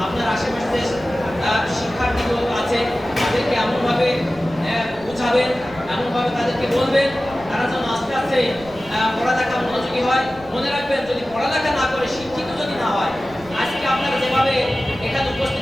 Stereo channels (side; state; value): right; noise; rumble, 21 dB below the sound